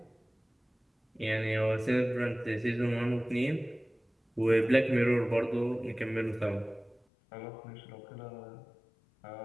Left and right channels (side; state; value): right; drops out; at 7.0 s